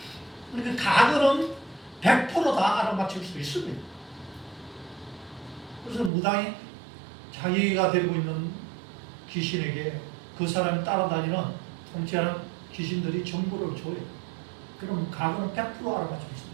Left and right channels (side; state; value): left; drops out; at 6.1 s